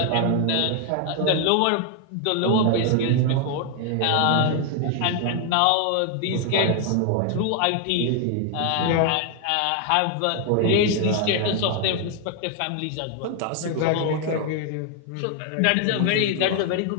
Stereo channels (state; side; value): different; both; correlation 0.00